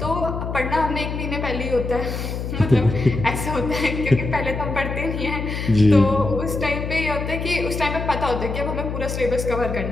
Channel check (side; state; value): left; noise; hum, 5 dB below the sound